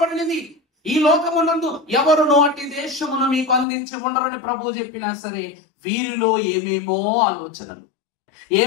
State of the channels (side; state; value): right; drops out; at 3.7 s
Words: ఈ లోకమునందు ఎవరునో అట్టి దేశమును మీకు అందించి ఉండరని ప్రభు చెప్పినా సరే వీరిలో ఏమేమో ఆలోచనలు,